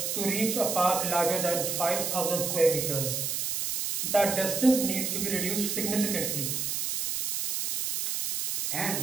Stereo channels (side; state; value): right; noise; hiss, 1 dB below the sound